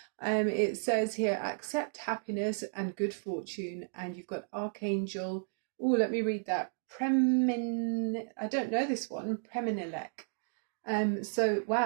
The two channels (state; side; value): silent; left; digital silence